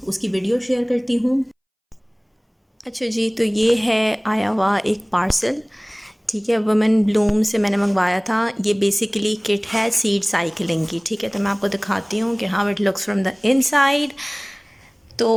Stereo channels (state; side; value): identical; both; correlation 1.00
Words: उसकी वीडियो शेयर करती हूँ। अच्छा जी, तो ये है आया हुआ एक पार्सल, ठीक है, वुमेन ब्लूम से मैंने मंगवाया था। ये बेसिकली किट है सीड साइकिलिंग की, ठीक है। तो मैं आपको दिखाती हूँ कि how it looks from the inside.